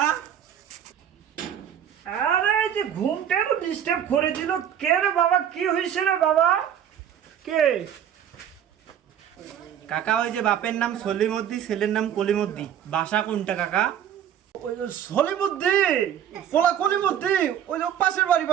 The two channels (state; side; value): quieter; left; 9.5 dB